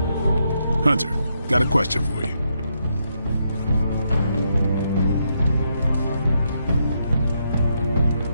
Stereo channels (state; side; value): inverted; both; correlation -0.79